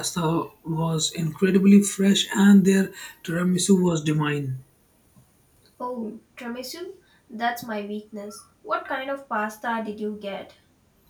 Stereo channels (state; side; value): identical; both; correlation 1.00